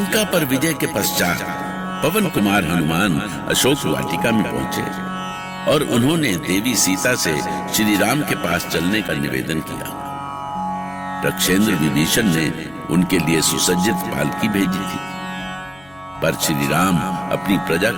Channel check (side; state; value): left; noise; hum, 28 dB below the sound